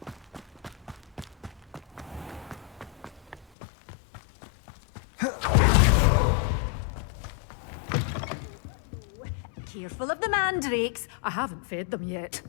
Careful of the mandrakes. I haven't fed them yet.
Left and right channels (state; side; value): drops out; right; at 3.5 s